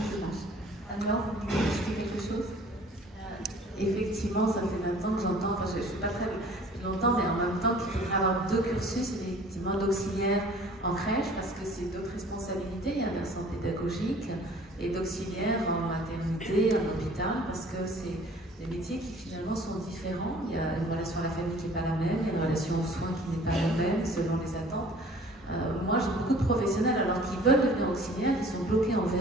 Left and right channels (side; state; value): both; normal; correlation 0.51